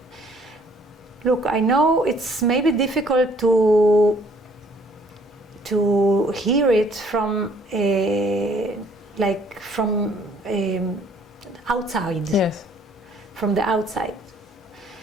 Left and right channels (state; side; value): normal; both; correlation 0.61